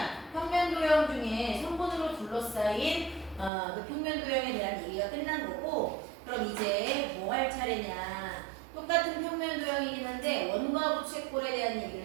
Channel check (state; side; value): drops out; left; at 3.5 s